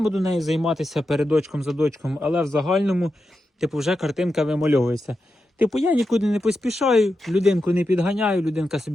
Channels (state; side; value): normal; both; correlation 0.89